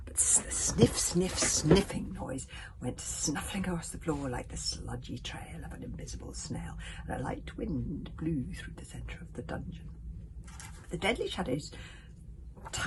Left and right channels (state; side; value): identical; both; correlation 1.00